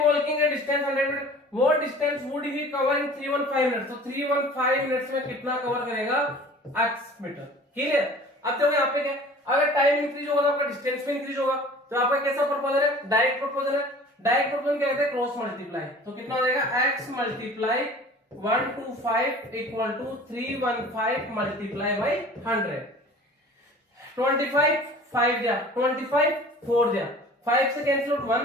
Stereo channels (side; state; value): both; normal; correlation 0.44